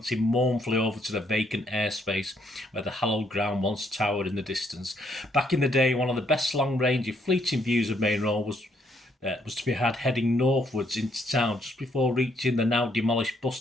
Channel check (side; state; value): both; normal; correlation 0.71